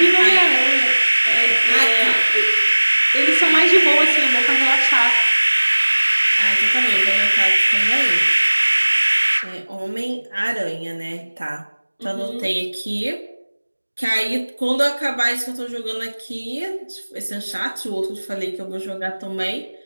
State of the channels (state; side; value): inverted; both; correlation -1.00